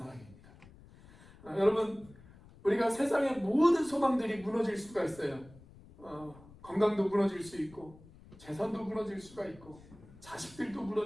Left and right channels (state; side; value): noise; left; rumble, 22 dB below the sound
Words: 여러분, 우리가 세상의 모든 소망들이 무너질 수가 있어요. 건강도 무너질 수 있고, 재산도 무너질 수가 있고, 자식들도